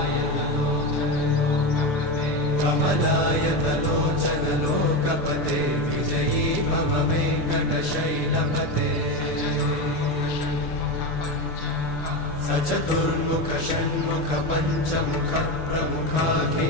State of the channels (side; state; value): right; late; 6.9 ms